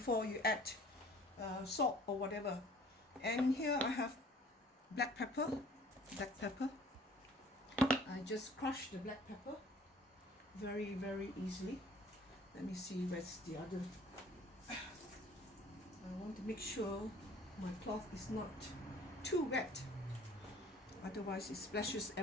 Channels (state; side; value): normal; both; correlation 0.52